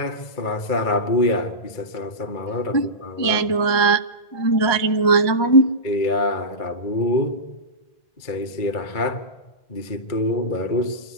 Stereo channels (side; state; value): right; late; 1.2 ms